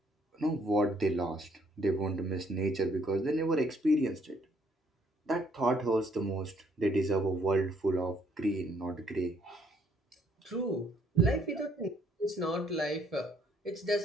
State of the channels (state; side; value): normal; both; correlation 0.66